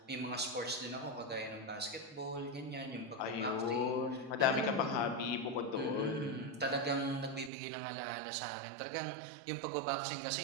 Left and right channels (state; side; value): drops out; left; at 7.5 s